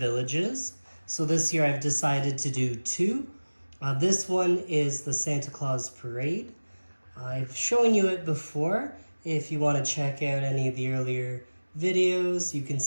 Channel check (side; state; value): both; inverted; correlation -1.00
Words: So this year I've decided to do two. This one is the Santa Claus Parade. I've shown you it before. If you want to check out any of the earlier videos, you can